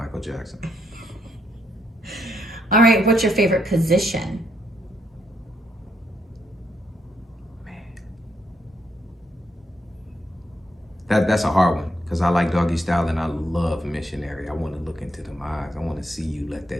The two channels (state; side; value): normal; both; correlation 0.76